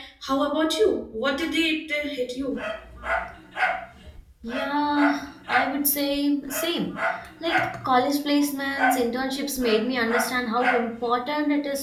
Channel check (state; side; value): identical; both; correlation 1.00